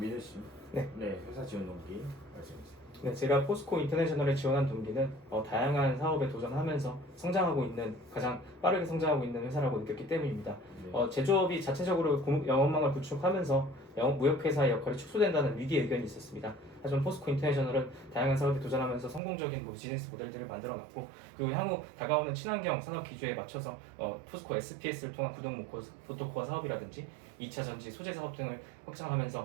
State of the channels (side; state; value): left; drops out; at 19.2 s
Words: 민우 씨. 네. 네, 회사 지원 동기 말씀해 주세요. 네, 제가 포스코 인터내셔널에 지원한 동기는 다양한 사업에 도전하면서 성장하고 있는 가장 빠르게 성장하고 있는 회사라고 느꼈기 때문입니다. 네. 제조업이 자체적으로 영업망을 구축하면서 무역회사의 역할이 축소된다는 위기 의견이 있었습니다. 하지만 포스코 인터내셔널은 다양한 사업에 도전하면서 성공적인 비즈니스 모델들을 만들어놨고 그리고 향후 다가오는 친환경 산업 기조에 맞춰서 포스코 SPS를 통한 구동 모터코어 사업이라든지 2차 전지 소재 사업 등을